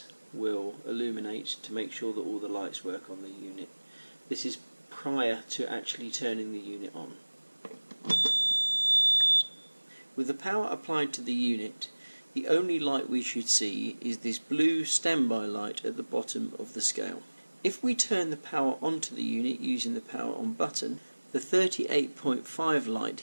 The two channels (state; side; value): inverted; both; correlation -1.00